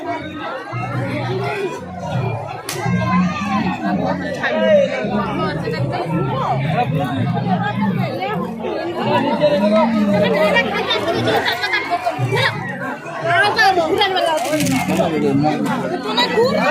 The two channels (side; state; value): both; identical; correlation 1.00